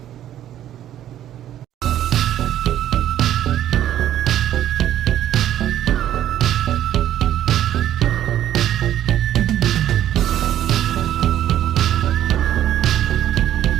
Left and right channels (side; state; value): left; quieter; 11.7 dB